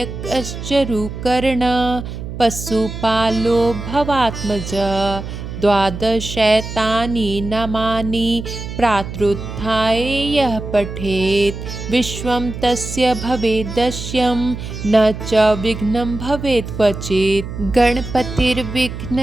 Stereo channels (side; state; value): right; noise; hum, 8 dB below the sound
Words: रुकर्ण पशुपालो भवात्मज द्वादशैतानि नामानि प्रातरुत्थाय यः पठेत् विश्वं तस्य भवेद्दश्यं न च विघ्नं भवेत् क्वचित्।